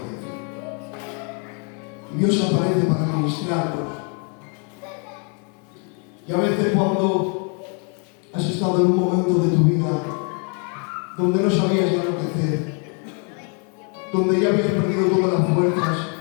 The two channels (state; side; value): quieter; right; 38.2 dB